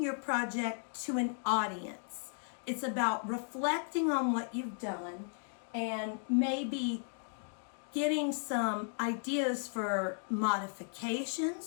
your project to an audience. It's about reflecting on what you've done and maybe getting some ideas for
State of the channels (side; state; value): right; silent; 54 dB below the other